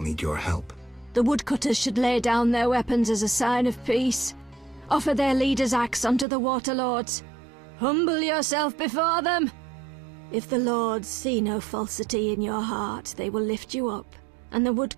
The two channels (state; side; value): drops out; left; at 6.2 s